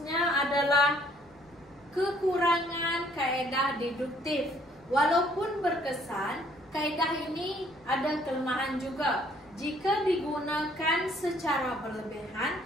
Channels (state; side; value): noise; left; rumble, 30 dB below the sound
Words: adalah kekurangan kaedah deduktif. Walaupun berkesan, kaedah ini ada kelemahan juga. Jika digunakan secara berlebihan,